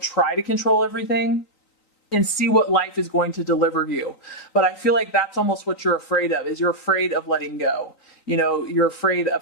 try to control everything, and see what life is going to deliver you. But I feel like that's almost what you're afraid of, is you're afraid of letting go. You're afraid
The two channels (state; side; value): late; right; 3.9 ms